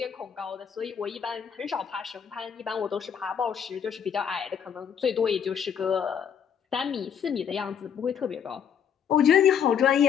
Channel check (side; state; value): right; quieter; 7.9 dB